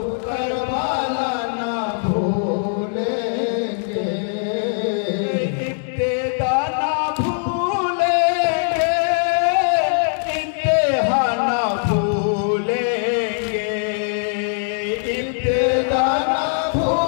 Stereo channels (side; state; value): right; silent; 65 dB below the other